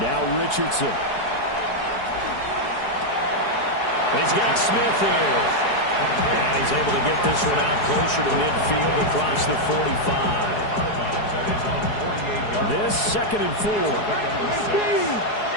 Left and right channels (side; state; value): right; late; 4.7 ms